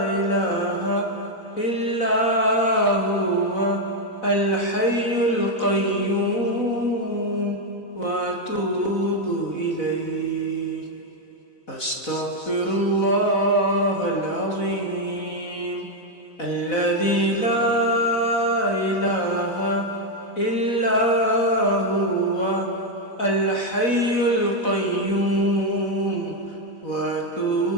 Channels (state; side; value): late; right; 4.0 ms